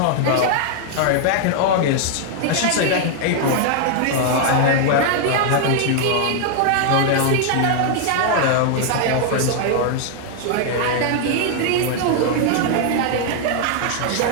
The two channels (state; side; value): different; both; correlation 0.00